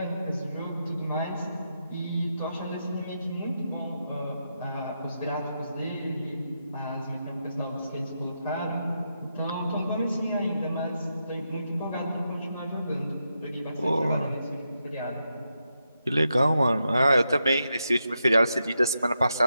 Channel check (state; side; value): inverted; both; correlation -0.85